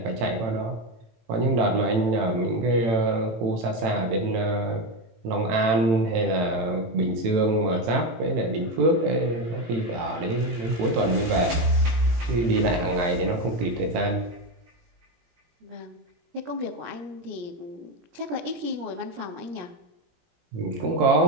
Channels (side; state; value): left; late; 18 ms